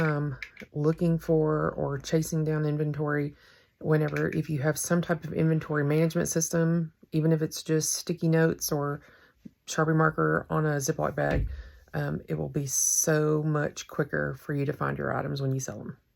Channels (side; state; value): both; identical; correlation 1.00